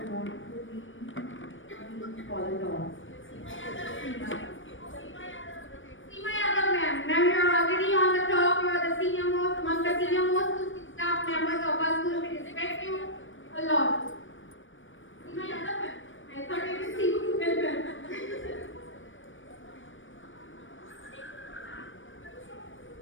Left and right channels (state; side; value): late; right; 0.56 ms